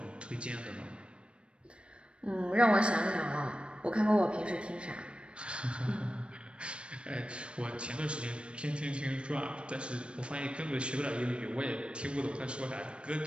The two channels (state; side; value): late; left; 0.057 ms